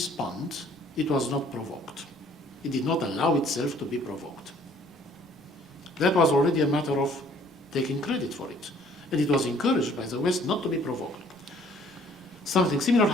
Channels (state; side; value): normal; both; correlation 0.58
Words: it was not provoked. It did not allow itself to be provoked. That was already a matter of taking credit for it. And it was encouraged by the West not to be provoked. Something similar